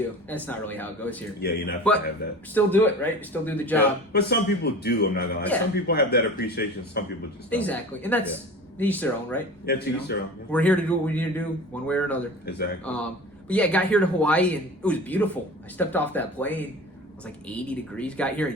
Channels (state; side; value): normal; both; correlation 0.37